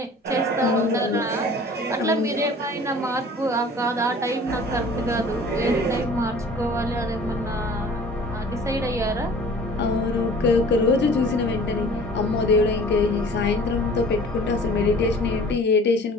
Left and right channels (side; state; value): both; normal; correlation 0.47